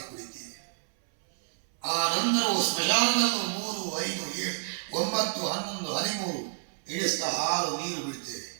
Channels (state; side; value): silent; left; 58 dB below the other